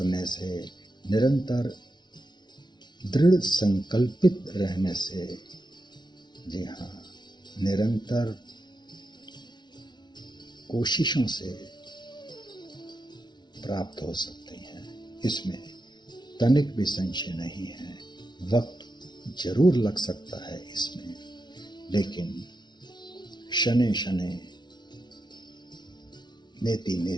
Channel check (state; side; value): late; right; 0.21 ms